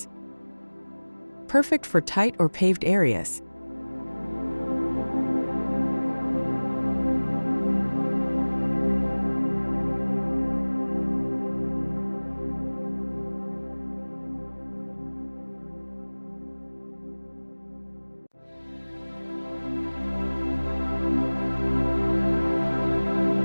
Perfect for tight or paved areas.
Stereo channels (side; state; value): both; inverted; correlation -1.00